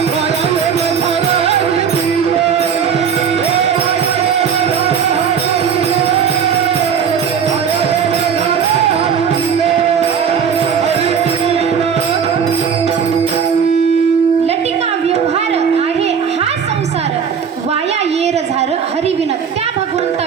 हरिविन, त्या भगवंता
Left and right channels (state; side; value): quieter; left; 7.2 dB